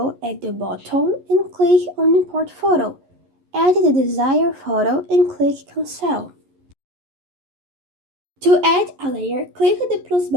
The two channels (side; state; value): left; late; 11 ms